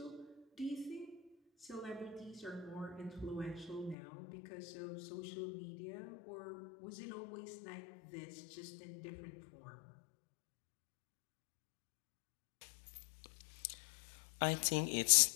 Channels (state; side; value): drops out; right; at 4.0 s